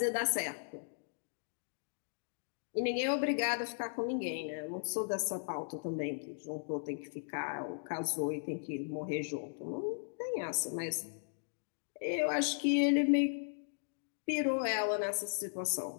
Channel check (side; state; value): right; silent; digital silence